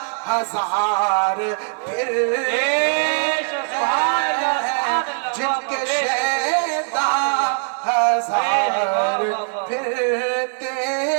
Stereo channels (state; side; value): silent; left; 57 dB below the other